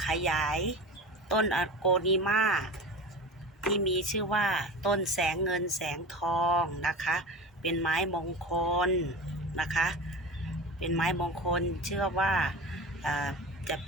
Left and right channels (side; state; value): both; normal; correlation 0.32